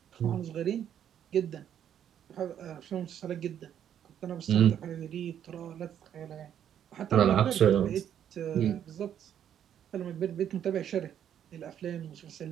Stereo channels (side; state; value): left; quieter; 9.7 dB